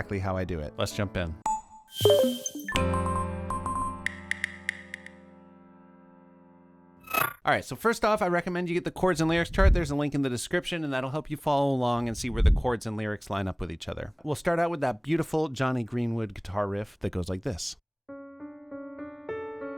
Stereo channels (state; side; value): identical; both; correlation 1.00